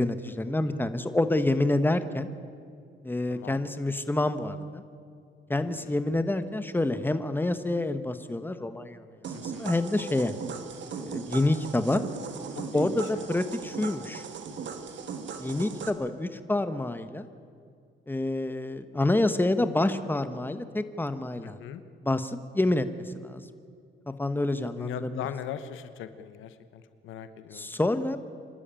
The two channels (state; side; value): normal; both; correlation 0.88